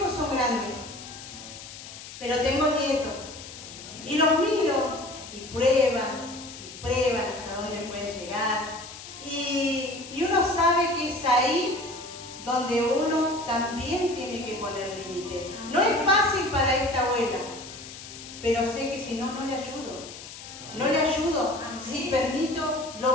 son grandes, pero tengo nietos. Y los miro y prueban hasta dónde pueden llegar. Y uno sabe que es ahí donde uno también tiene que poner límite. No es fácil para esta abuela, pero sé que si no, no le ayudo. No le ayudo si permito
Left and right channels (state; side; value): noise; left; hiss, 14 dB below the sound